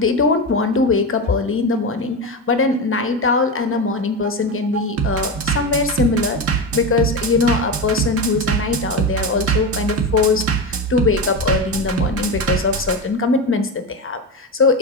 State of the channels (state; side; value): normal; both; correlation 0.18